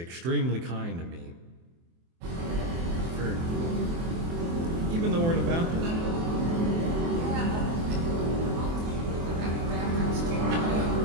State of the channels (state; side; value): late; left; 24 ms